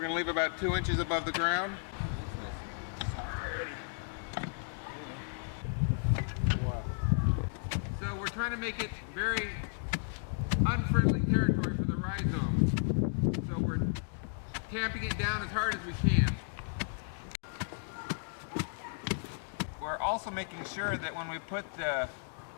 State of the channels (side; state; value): right; silent; digital silence